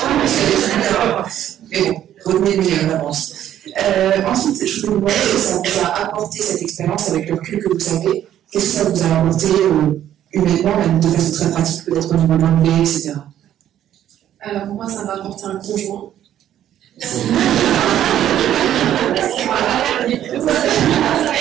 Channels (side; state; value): left; quieter; 11.3 dB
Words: Mais bon, retenez le meilleur d'avance. Ensuite, je voulais vous demander si ça vous a apporté cette expérience avec le recul que vous avez. Qu'est-ce que ça vous a apporté humainement, même de façon très pratique, peut-être au niveau de l'anglais, etc. Alors moi, ça m'a apporté un conjoint. Tout